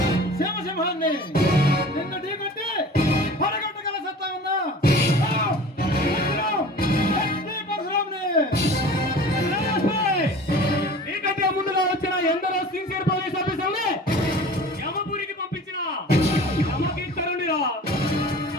సింహాన్ని నిన్ను ఢీకొట్టి పడగొట్టగల సత్తా ఉందా? నీకంటే ముందుగా వచ్చిన ఎందరో సిన్సియర్ పోలీస్ ఆఫీసర్ని యమపురికి పంపించిన యమకింకరుడిరా.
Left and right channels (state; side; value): normal; both; correlation 0.42